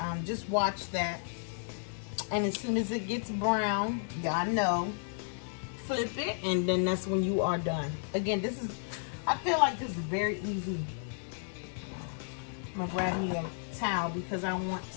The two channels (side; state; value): right; silent; digital silence